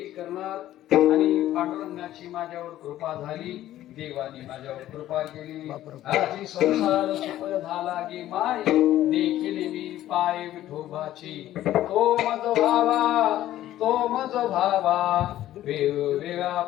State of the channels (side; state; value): right; quieter; 13.5 dB